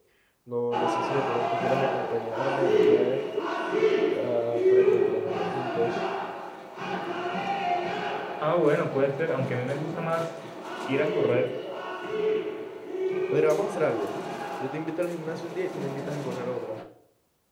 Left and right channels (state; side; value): identical; both; correlation 1.00